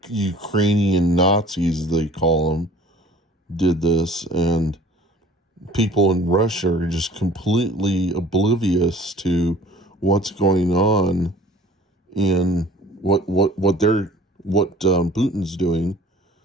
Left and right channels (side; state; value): both; normal; correlation 0.49